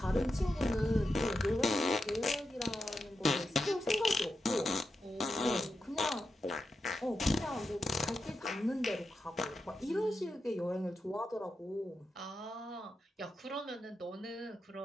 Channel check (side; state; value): both; normal; correlation 0.88